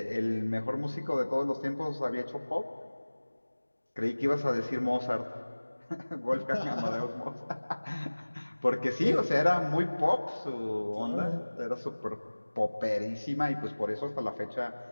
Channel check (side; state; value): both; inverted; correlation -1.00